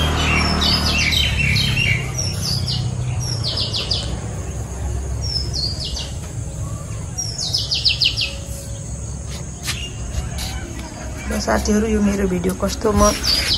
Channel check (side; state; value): both; identical; correlation 1.00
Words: साथीहरु, यो मेरो भिडियो कस्तो